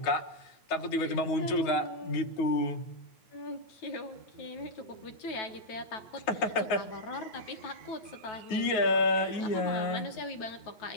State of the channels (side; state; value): right; late; 9.5 ms